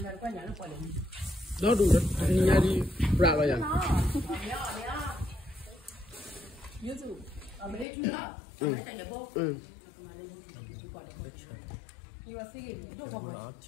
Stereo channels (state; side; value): drops out; right; at 7.9 s